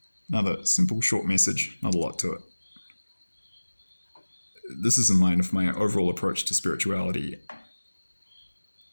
Another simple, short message, not a lot to it. This is in line with my overall approach to spirituality,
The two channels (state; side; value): inverted; both; correlation -1.00